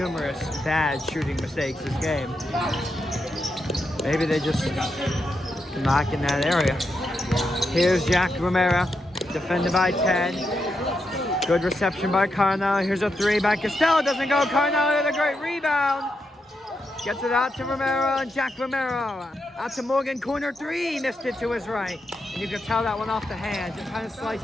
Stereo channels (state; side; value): normal; both; correlation 0.84